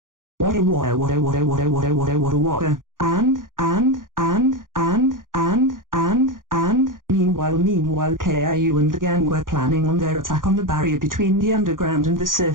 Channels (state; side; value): late; left; 0.90 ms